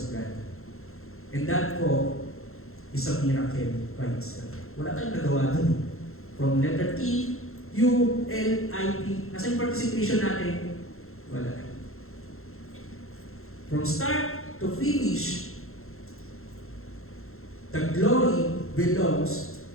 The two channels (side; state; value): right; late; 0.62 ms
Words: God. And that po is a miracle by itself. Wala tayong nagawa dun. From letter T, U, L, I, P. Nasa yung participation natin? Wala. From start to finish, the glory belongs